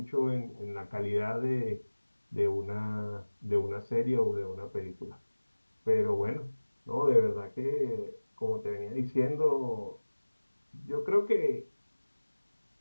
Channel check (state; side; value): inverted; both; correlation -1.00